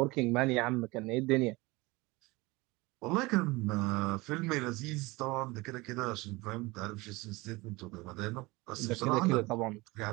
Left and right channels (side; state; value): left; quieter; 22.8 dB